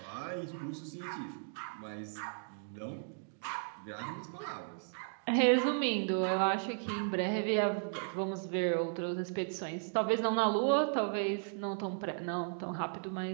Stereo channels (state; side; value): silent; left; digital silence